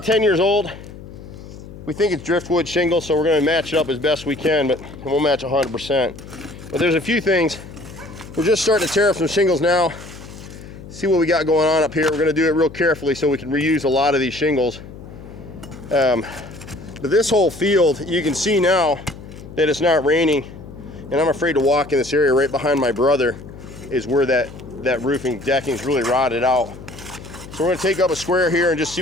10 years old. We think it's driftwood shingle, so we're gonna match it up as best we can, but it won't match 100%. But there's a few things. We're just starting to tear up some shingles now. See what we got going on up here. We're gonna do it real carefully so we can reuse a lot of these shingles. But this whole field, you can see now that it's not raining. And I'm afraid to walk in this area. Right behind my brother is where that roofing decking is really rotted out. So we're going to take up a square here and just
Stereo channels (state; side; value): noise; left; hum, 15 dB below the sound